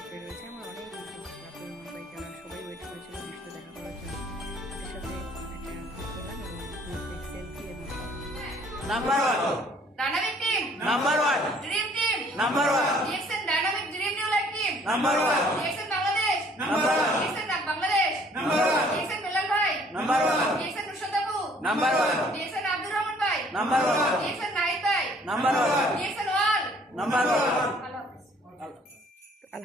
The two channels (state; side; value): normal; both; correlation 0.58